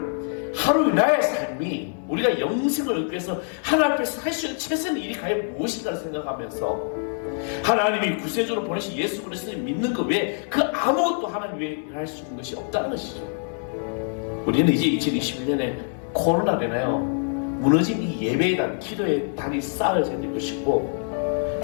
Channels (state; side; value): silent; right; 56 dB below the other